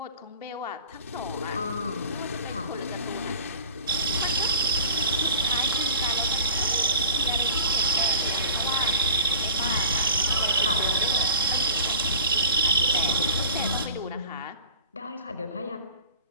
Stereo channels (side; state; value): both; inverted; correlation -0.40